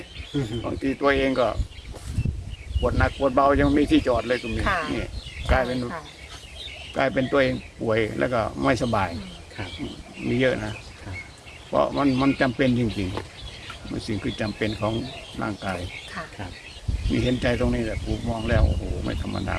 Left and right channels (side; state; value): both; identical; correlation 1.00